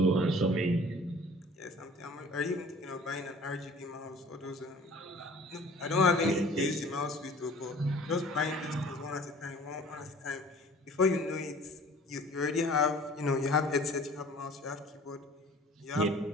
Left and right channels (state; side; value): normal; both; correlation 0.48